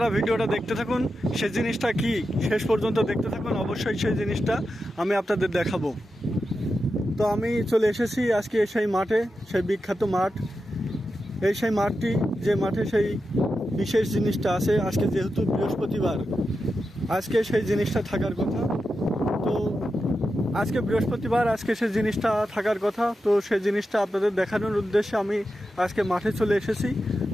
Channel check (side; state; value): both; normal; correlation 0.90